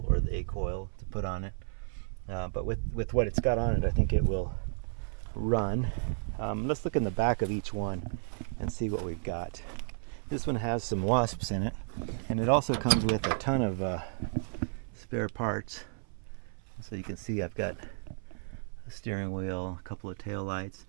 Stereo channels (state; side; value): silent; left; 56 dB below the other